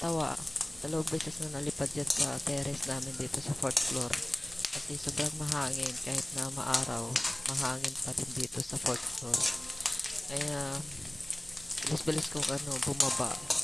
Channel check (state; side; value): noise; right; rumble, 23 dB below the sound